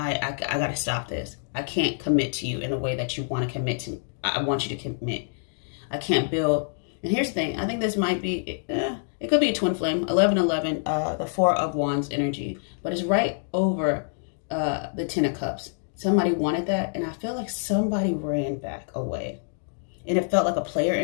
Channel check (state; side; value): silent; right; digital silence